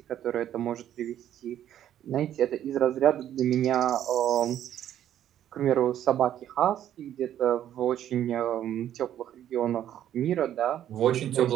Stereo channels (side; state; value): left; quieter; 11.1 dB